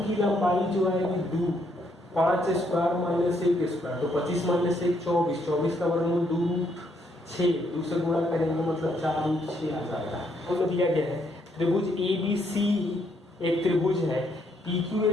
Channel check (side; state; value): both; normal; correlation 0.73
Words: की लंबाई जो आएगी 2, 5 स्क्वायर माइनस 1 स्क्वायर, तो 25 माइनस 1 24, 24 का वर्गमूल 2 रूट 6, 2 से गुणा करेंगे मतलब 4 रूट 6 आ जाएगा। तो दिया गया है त्रिभुज ए बी सी एक त्रिभुज है, पी क्यू